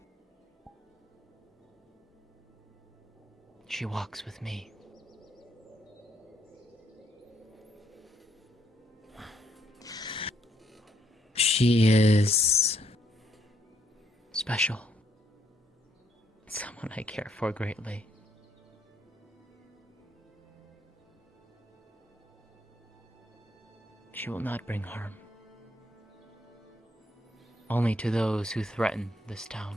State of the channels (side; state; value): both; normal; correlation 0.71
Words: She walks with me. She is special. Someone I care for greatly. She will not bring harm. Only to those who threaten this